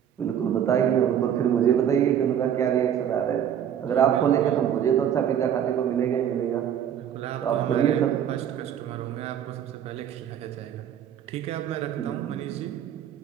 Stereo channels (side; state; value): left; quieter; 9.5 dB